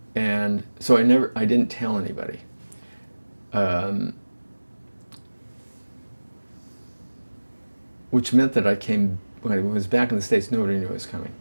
And so I didn't tell anybody. Which meant that when I was back in the States, nobody knew I was coming.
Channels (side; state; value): both; inverted; correlation -1.00